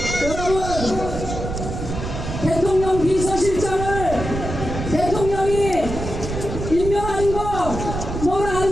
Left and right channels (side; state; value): right; noise; rumble, 6 dB below the sound